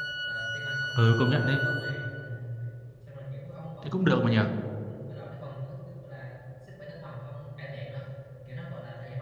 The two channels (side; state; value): both; identical; correlation 1.00